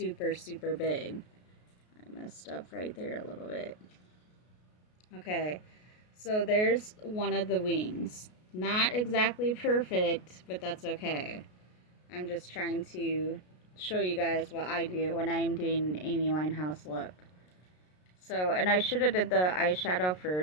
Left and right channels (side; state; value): right; late; 33 ms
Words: super big. I messed up right there a little bit. Okay, so there's one of the wings. Not exactly perfect, but that's okay. I'm just trying to show you guys what I do when I'm doing an Amy Winehouse look. So, and I should have did the eyeshadow